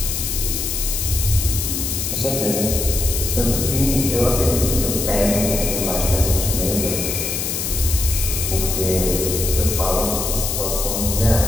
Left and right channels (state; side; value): noise; left; hiss, 2 dB below the sound